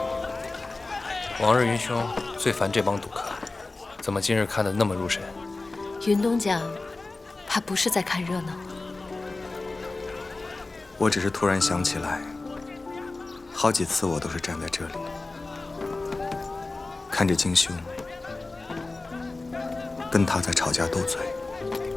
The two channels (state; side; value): quieter; right; 3.4 dB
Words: 往日云兄最烦这帮赌客，怎么今日看得那么入神？云东讲，他不是在看热闹。我只是突然想起来，好几次我都是站在这里，看着金兄跟他在吵架斗嘴。